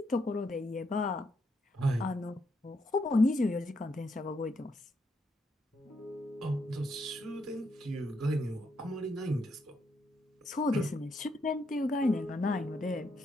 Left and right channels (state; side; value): normal; both; correlation 0.78